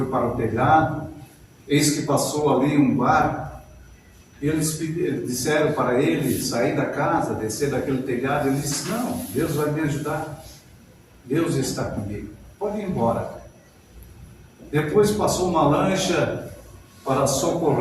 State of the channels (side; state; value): both; identical; correlation 1.00